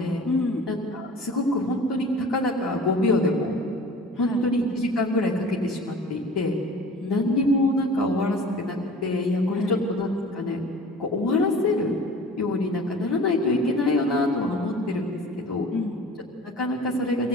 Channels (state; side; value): normal; both; correlation 0.42